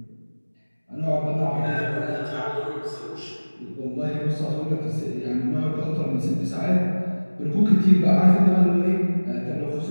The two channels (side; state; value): both; inverted; correlation -1.00